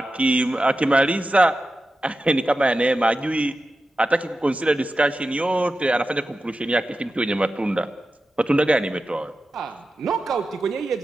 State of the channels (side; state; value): both; normal; correlation 0.92